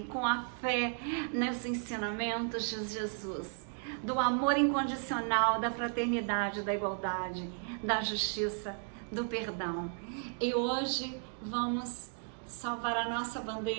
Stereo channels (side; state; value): left; silent; 55 dB below the other